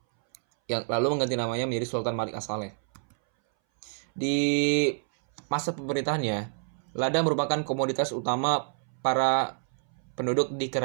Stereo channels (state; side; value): silent; left; 59 dB below the other